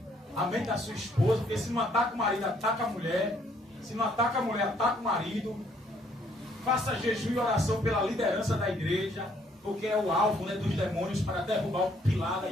A mente da sua esposa. Porque se não ataca o marido, ataca a mulher. Se não ataca a mulher, ataca o marido. Faça jejum e oração pela liderança da igreja. Porque é o alvo, né, dos demônios para derrubar o pilar da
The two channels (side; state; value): both; normal; correlation 0.66